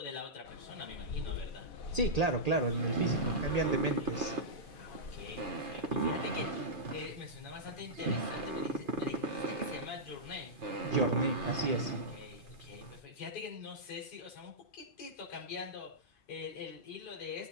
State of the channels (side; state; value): right; late; 2.4 ms